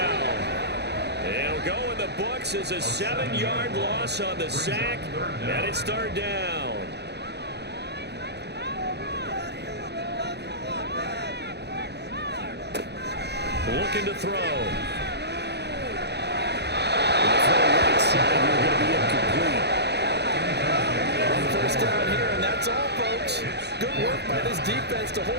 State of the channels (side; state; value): left; late; 0.49 ms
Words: It'll go in the books as a 7-yard loss on the sack, and it's 3rd down. Looking to throw. The throw right side, you're going to be incomplete. First down here, and that's all, folks. Good work by this defense to